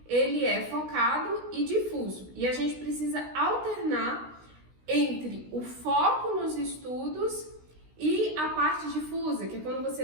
ele é focado e difuso. E a gente precisa alternar entre o foco nos estudos e a parte difusa, que é quando você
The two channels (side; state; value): left; late; 16 ms